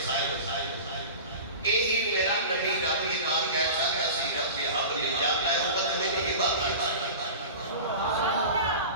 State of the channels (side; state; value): both; inverted; correlation -0.34